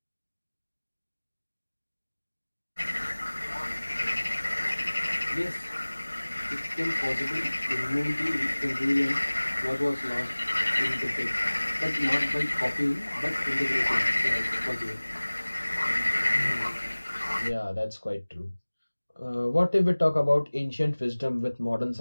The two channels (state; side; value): inverted; both; correlation -1.00